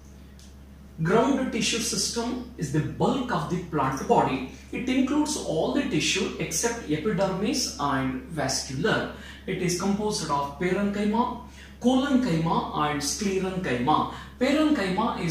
Ground tissue system is the bulk of the plant body. It includes all the tissue except epidermis and vascular. It is composed of parenchyma, collenchyma and sclerenchyma. Parenchyma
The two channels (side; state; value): both; identical; correlation 1.00